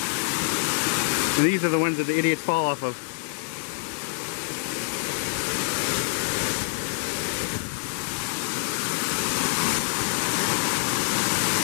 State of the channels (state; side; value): silent; right; digital silence